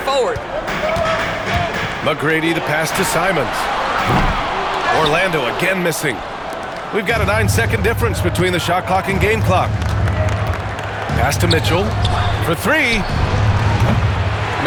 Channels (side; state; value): both; identical; correlation 1.00